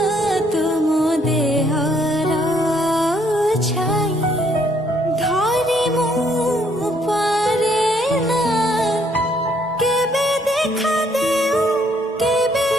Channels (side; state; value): both; normal; correlation 0.67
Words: তুম দেহর ছাই ধরিমু পারে না কেবে দেখা দেও কেবে